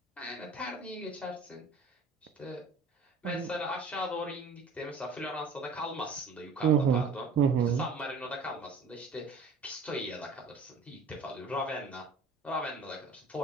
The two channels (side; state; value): left; quieter; 4.0 dB